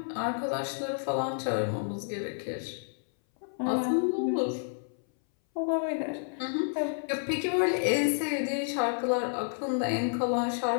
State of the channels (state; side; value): silent; right; 58 dB below the other